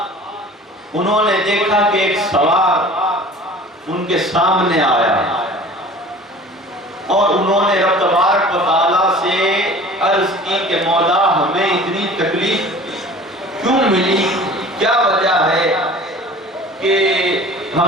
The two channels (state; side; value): normal; both; correlation 0.44